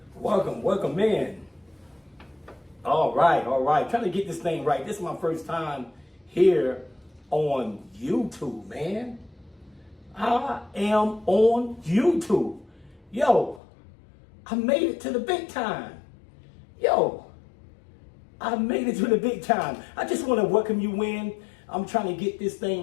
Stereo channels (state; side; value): drops out; right; at 13.6 s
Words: Welcome in. All right. Trying to get this thing right. This is my first time here on YouTube, man. I am on YouTube. Yo, I made it to the big time. I made it to the big time. I just want to welcome you in. I'm trying to get this thing